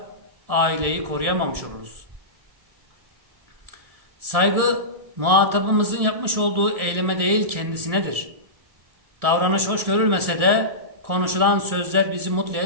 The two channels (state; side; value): late; left; 1.6 ms